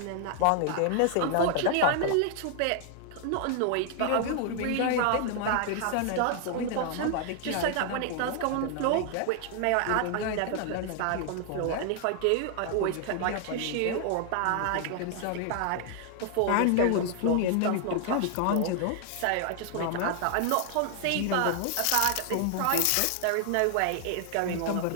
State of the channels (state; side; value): different; both; correlation 0.00